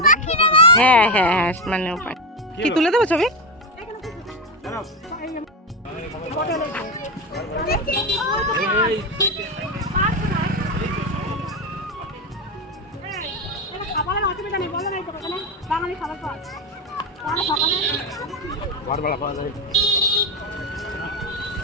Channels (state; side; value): normal; both; correlation 0.12